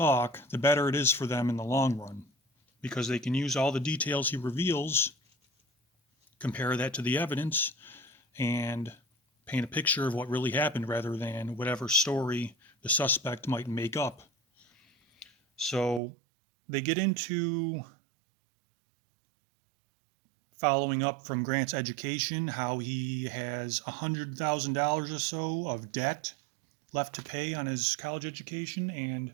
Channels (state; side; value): drops out; left; at 16.0 s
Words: the better it is for them in the long run, because they can use all the details he reveals, compare that to the evidence, and paint a picture of what really happened rather than whatever story the suspect might make up. So they get into following up from Grant's education, how he has $100,000 or so of debt left to pay on his college education.